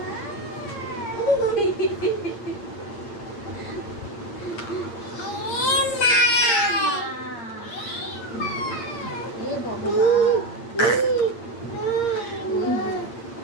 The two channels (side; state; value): right; late; 8.6 ms